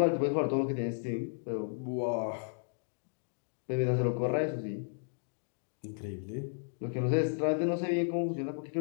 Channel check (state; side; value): silent; right; digital silence